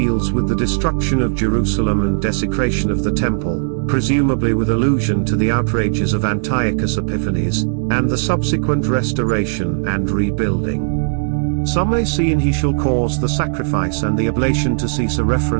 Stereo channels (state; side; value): silent; left; digital silence